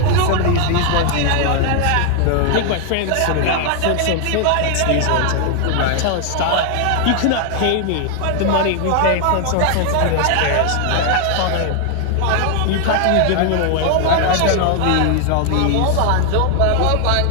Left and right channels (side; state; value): both; different; correlation 0.00